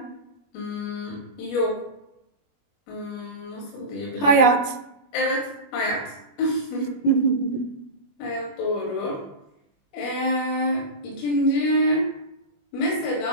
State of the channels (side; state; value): right; late; 21 ms